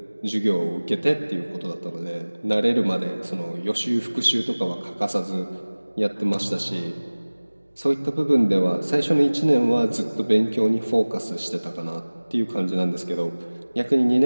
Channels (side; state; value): both; inverted; correlation -1.00